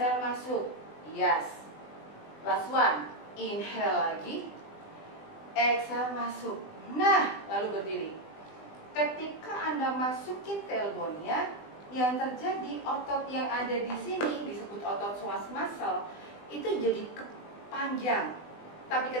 masuk. Yes. Last one. Inhale lagi, exhale masuk. Nah, lalu berdiri. Ketika Anda masukin tailbone-nya, yang terjadi otot yang ada di sini disebut otot psoas muscle itu jadi panjang. Tapi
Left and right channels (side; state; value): right; late; 20 ms